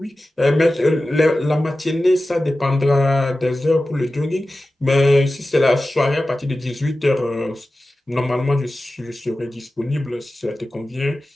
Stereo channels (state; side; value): normal; both; correlation 0.95